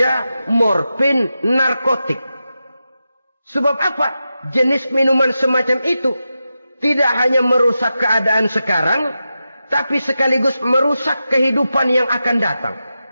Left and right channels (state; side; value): inverted; both; correlation -0.90